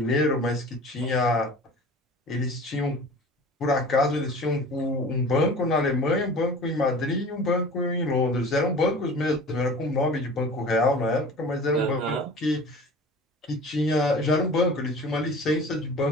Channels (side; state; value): both; normal; correlation 0.40